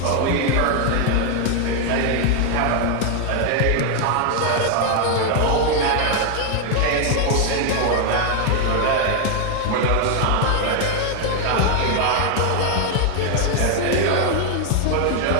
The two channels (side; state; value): both; different; correlation 0.01